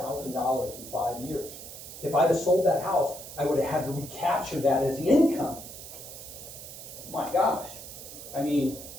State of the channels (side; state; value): right; noise; hiss, 12 dB below the sound